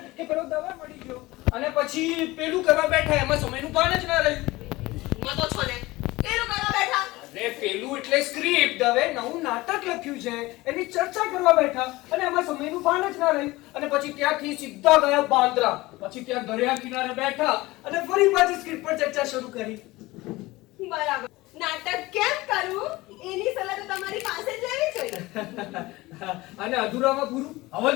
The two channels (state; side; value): quieter; right; 20.1 dB